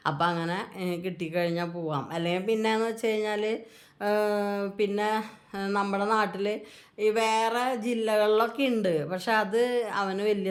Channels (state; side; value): identical; both; correlation 1.00